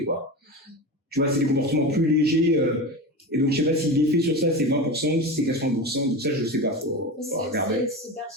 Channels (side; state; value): both; normal; correlation 0.25